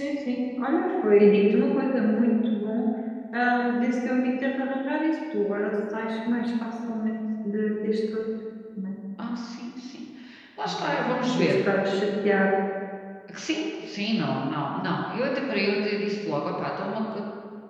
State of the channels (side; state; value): both; identical; correlation 1.00